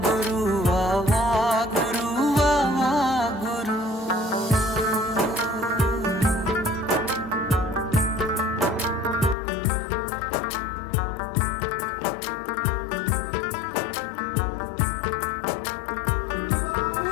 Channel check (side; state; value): right; drops out; at 9.3 s